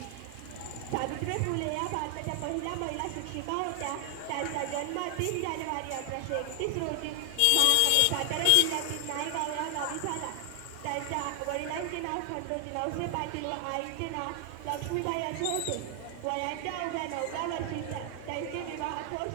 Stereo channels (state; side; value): different; both; correlation 0.00